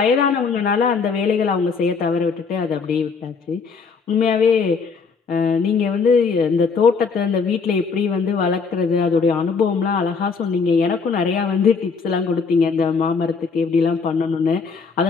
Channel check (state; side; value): quieter; right; 5.1 dB